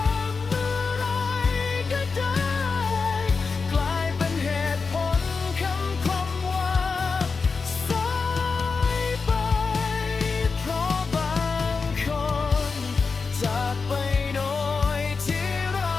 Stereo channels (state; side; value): quieter; right; 4.7 dB